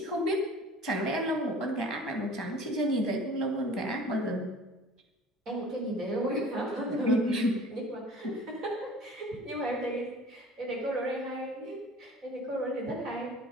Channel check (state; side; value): normal; both; correlation 0.45